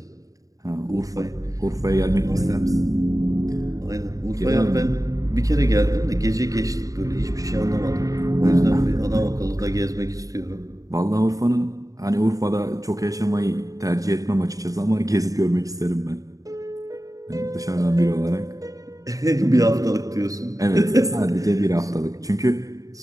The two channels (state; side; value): late; left; 0.17 ms